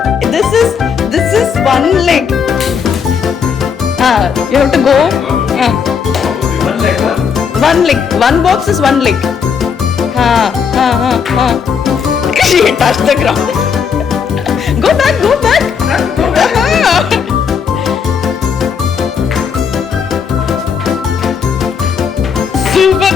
This is one leg. You have to go. One leg. One box is one leg. She touched the ground. Go back. Super.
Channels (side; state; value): right; quieter; 6.6 dB